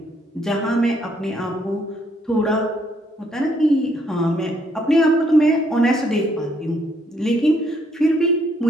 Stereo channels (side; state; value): both; normal; correlation 0.70